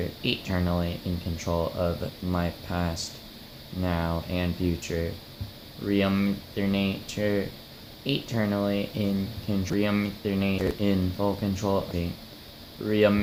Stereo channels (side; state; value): both; identical; correlation 1.00